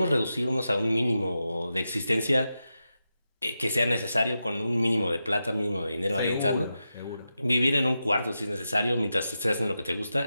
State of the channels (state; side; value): inverted; both; correlation -0.89